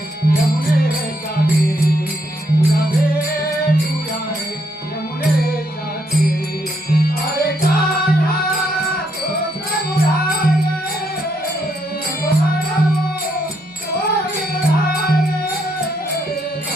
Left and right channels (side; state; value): both; normal; correlation 0.75